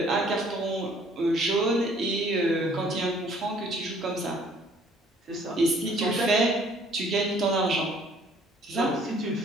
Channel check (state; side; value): normal; both; correlation 0.59